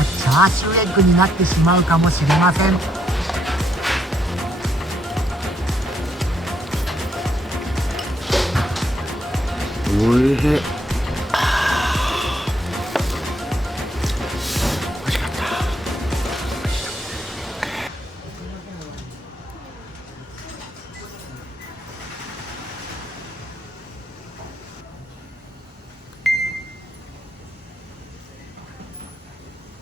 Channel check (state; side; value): normal; both; correlation 0.74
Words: チャーシューエッグになってしまうかもしれません。おいしい。